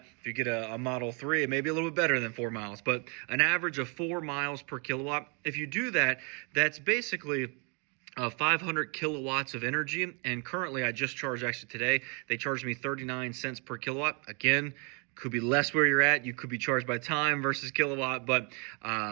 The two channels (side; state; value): left; quieter; 34.7 dB